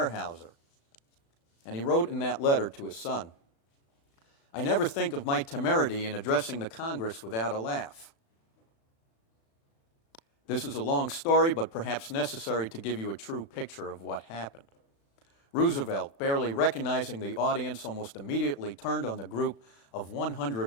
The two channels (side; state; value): right; late; 36 ms